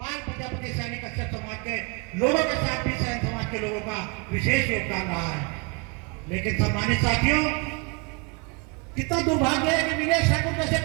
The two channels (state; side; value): quieter; left; 31.0 dB